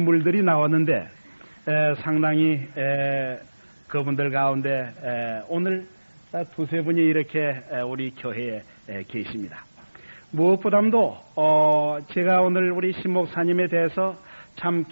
나왔는데 상당히 그분들 가운데 오늘 두세 분이 이렇게 우리 교회에 계십니다. 무엇보다도 제가 오늘 우리 신 목사님에 대해서 참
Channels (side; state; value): both; inverted; correlation -1.00